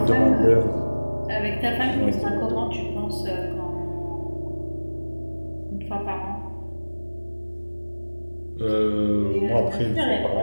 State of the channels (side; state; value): both; inverted; correlation -1.00